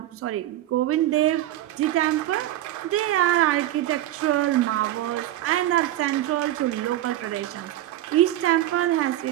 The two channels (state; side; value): quieter; left; 13.9 dB